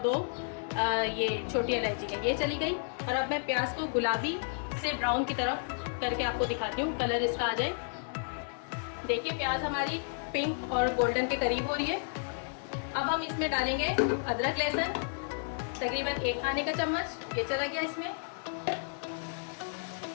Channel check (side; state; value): right; silent; 56 dB below the other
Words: 2 ये छोटी इलायची है। ये चली गई। और अब मैं प्याज को गुलाबी से ब्राउन की तरफ करके आपको दिखाती हूँ, कलर इसका आ जाए। देखिए प्याज हमारी पिंक और गोल्डन के करीब हो रही है। अब हम इसमें डालेंगे अदरक लहसुन, तकरीबन 1 खाने का चम्मच, ये चला गया इसमें।